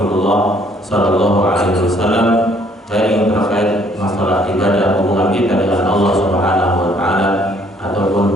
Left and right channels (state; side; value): normal; both; correlation 0.63